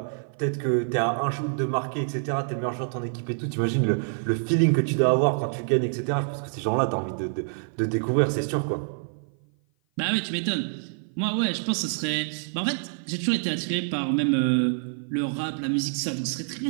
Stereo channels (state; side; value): silent; left; 55 dB below the other